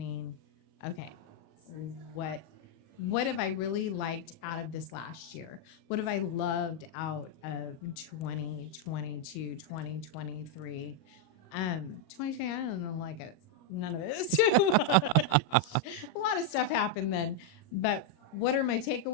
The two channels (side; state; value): right; late; 38 ms